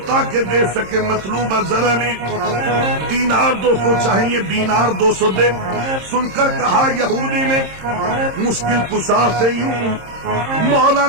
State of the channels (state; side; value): late; left; 26 ms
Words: تاکہ دے سکے مطلوبہ زر علی دینار 200 چاہیے دینار 200 دے سن کر کہا یہودی نے مشکل کشا سے یوں مولا